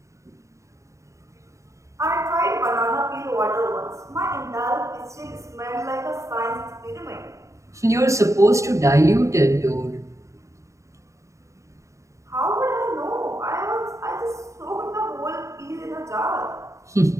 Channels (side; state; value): left; late; 0.15 ms